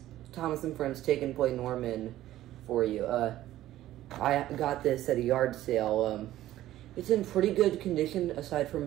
Thomas and Friends Take and Play Norman for you. I got this at a yard sale. It's in pretty good condition aside from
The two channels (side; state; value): left; quieter; 14.1 dB